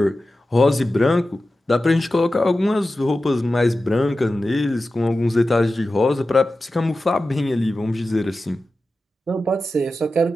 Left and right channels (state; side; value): normal; both; correlation 0.93